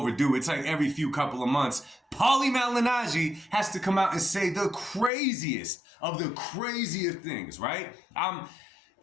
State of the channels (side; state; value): right; drops out; at 5.1 s